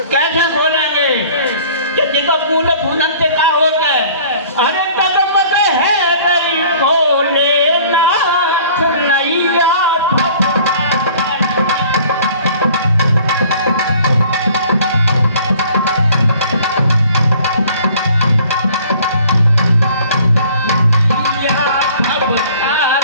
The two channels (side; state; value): both; inverted; correlation -0.51